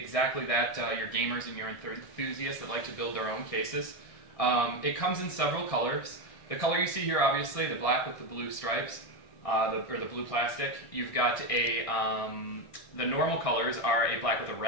that, your gamers and your enthusiasts that like to build their own cases. It comes in several colors. The color you see here, obviously, the black with the blue stripes, or the blue plastic. You've got the normal colors are a black with a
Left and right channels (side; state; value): right; late; 1.6 ms